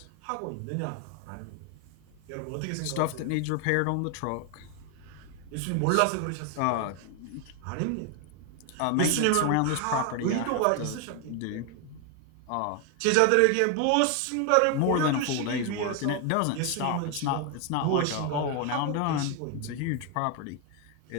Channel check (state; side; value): different; both; correlation 0.01